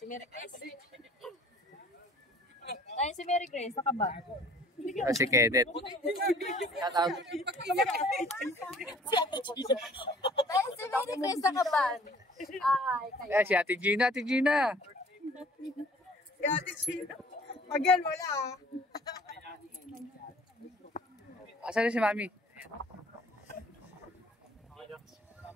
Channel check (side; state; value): both; normal; correlation 0.53